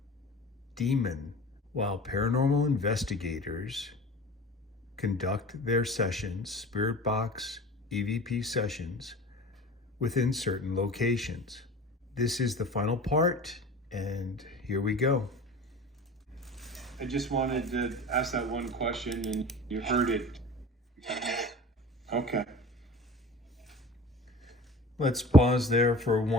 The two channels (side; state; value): both; normal; correlation 0.39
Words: demon while paranormal investigators conduct their sessions, spirit box EVP sessions, within certain locations. This is the final part, and here we go. I just wanted to ask that one question, and you heard it. Okay. Let's pause there for